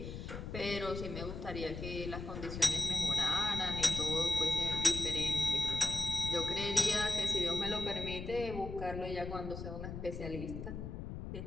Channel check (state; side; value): noise; left; rumble, 7 dB below the sound